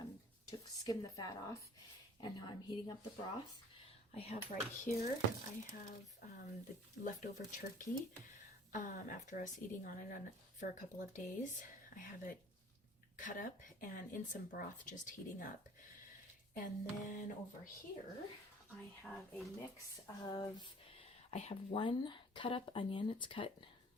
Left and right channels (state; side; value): normal; both; correlation 0.50